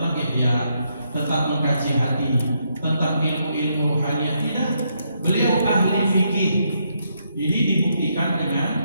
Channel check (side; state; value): both; inverted; correlation -0.77